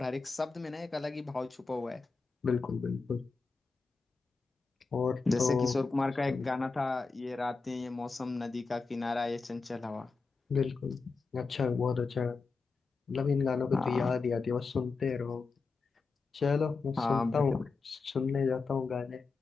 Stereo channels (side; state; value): right; quieter; 4.4 dB